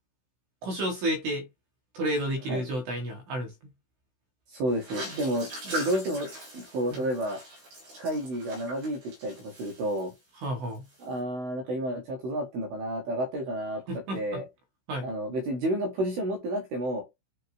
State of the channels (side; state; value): left; late; 16 ms